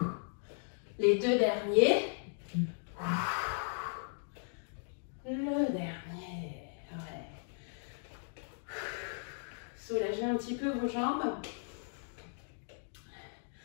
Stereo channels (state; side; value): silent; right; digital silence